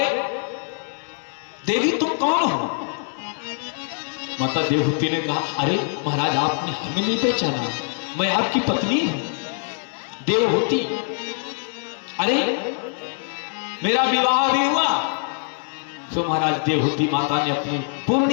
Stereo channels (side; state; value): right; silent; 63 dB below the other